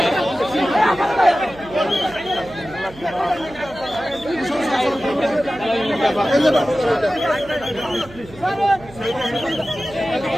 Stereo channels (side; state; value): right; noise; hum, 20 dB below the sound